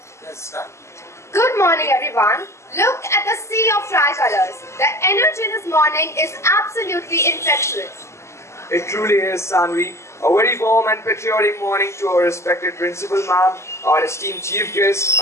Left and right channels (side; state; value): right; late; 0.13 ms